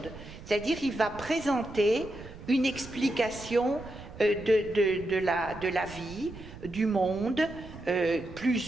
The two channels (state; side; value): noise; right; rumble, 15 dB below the sound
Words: C'est-à-dire, il va présenter une explication de la vie, du monde,